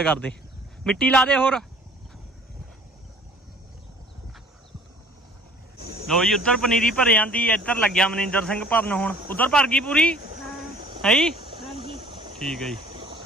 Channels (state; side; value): normal; both; correlation 0.52